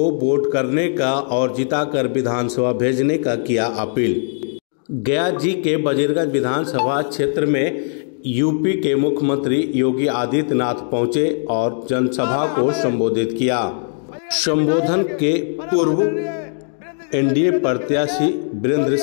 वोट करने का और जिताकर विधानसभा भेजने का किया अपील। गया जी के वजीरगंज विधानसभा क्षेत्र में यूपी के मुख्यमंत्री योगी आदित्यनाथ पहुंचे और जनसभा को संबोधित किया। संबोधन के पूर्व एनडीए प्रत्याशी वीरेंद्र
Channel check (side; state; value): right; silent; digital silence